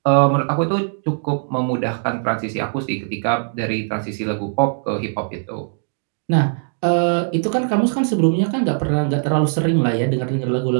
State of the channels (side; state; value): left; silent; digital silence